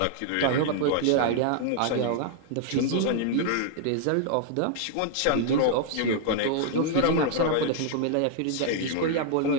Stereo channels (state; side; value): different; both; correlation -0.01